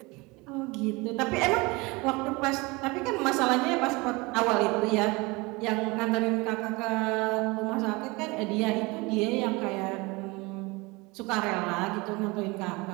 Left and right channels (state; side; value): quieter; left; 24.8 dB